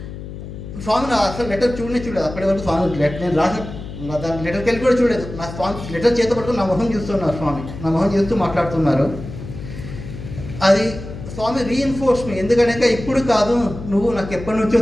స్వామి నా అసలు లెటర్ చూడలేదు. అప్పటి వరకు స్వామి నేను రాసిన దాని లెటర్కి వెళ్ళి కూడా చూడలేదు. నా స్వామి లెటర్ చేత పట్టుకుని నా మొహం చూస్తున్నారు. స్వామి నా మొహం చూస్తూ మాట్లాడుతున్నారు. అది స్వామి రీఇన్ఫోర్స్ మీ. ఎందుకంటే ఇప్పుడు కాదు, నువ్వు నాకు ఎప్పటి నుంచో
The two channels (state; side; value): noise; left; hum, 11 dB below the sound